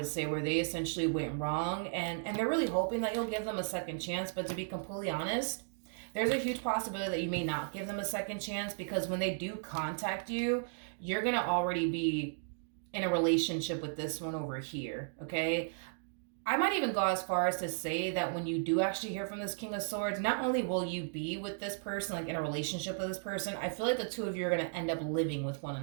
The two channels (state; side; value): silent; left; digital silence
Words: say, where they essentially went wrong, and they're really hoping that you'll give them a second chance. But to be completely honest, there's a huge possibility that you may not give them a second chance, because when they do contact you, you're going to already be in a relationship with this one over here, okay? I might even go as far as to say that when you do actually hear from this King of Swords, not only will you be with this person, like in a relationship with this person, I feel like the two of you are going to end up living with one